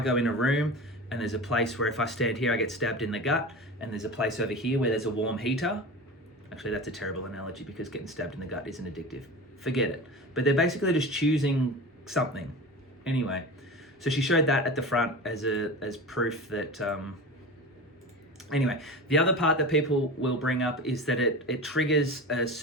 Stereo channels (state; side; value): normal; both; correlation 0.30